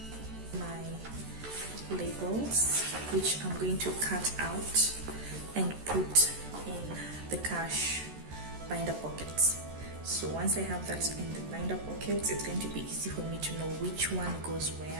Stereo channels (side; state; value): left; late; 14 ms